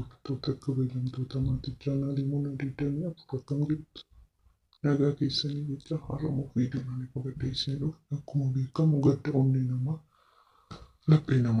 kabajamtoota maatii chaanaalii Muna 24 akkam jirtu? Nagaa keessanii jecha har'amuu viidiyoon qabadhee isin dhufe akkuma beekamu gadda onnee namaa laphee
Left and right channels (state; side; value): identical; both; correlation 1.00